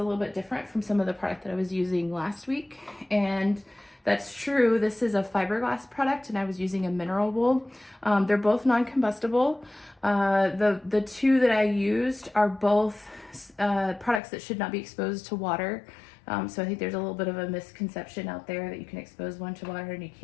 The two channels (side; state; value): right; drops out; at 14.2 s